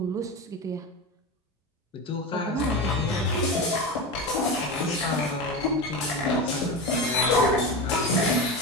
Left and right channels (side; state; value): both; normal; correlation 0.22